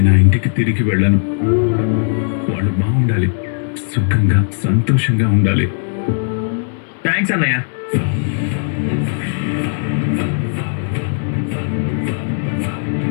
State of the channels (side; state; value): right; silent; 62 dB below the other